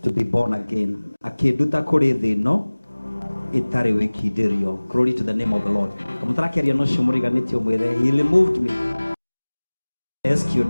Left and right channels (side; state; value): both; inverted; correlation -1.00